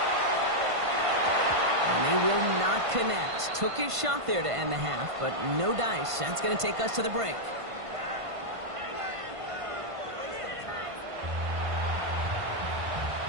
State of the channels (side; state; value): left; late; 1.5 ms